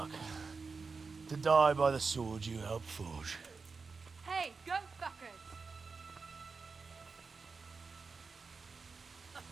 To die by the sword you helped forge. Hey, go fuckers!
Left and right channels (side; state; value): left; quieter; 4.6 dB